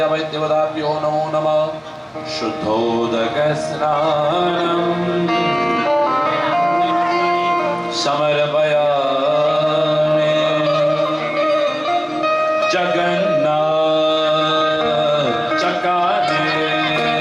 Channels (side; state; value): both; identical; correlation 1.00